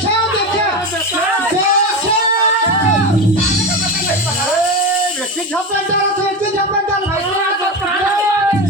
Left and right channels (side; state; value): both; normal; correlation 0.21